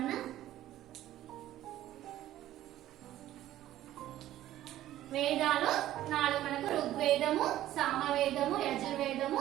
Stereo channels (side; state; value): left; quieter; 13.6 dB